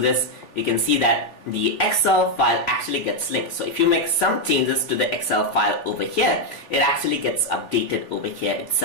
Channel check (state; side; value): late; right; 3.4 ms